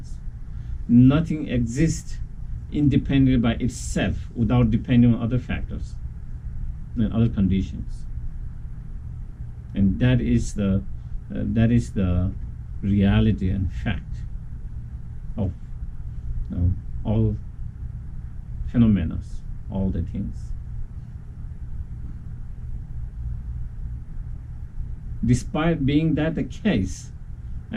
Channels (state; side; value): identical; both; correlation 1.00